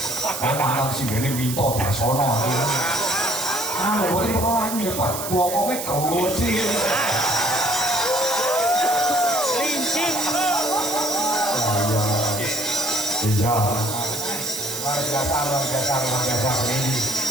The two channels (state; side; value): noise; right; hiss, 6 dB below the sound